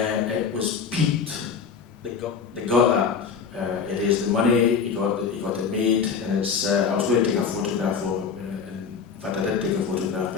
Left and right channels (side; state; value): right; quieter; 6.1 dB